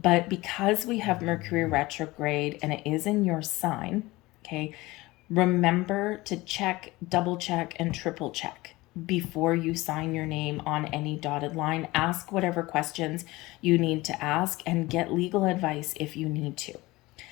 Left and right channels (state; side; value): quieter; right; 20.5 dB